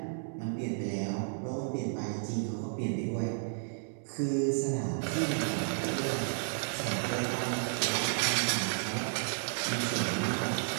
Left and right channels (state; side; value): silent; left; digital silence